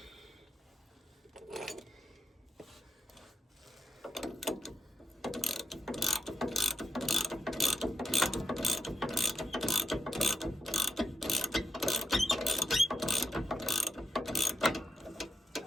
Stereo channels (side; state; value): both; normal; correlation 0.83